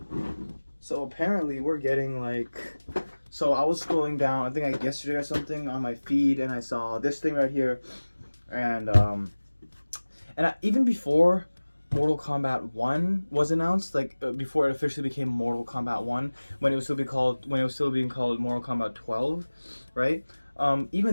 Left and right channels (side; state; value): both; inverted; correlation -1.00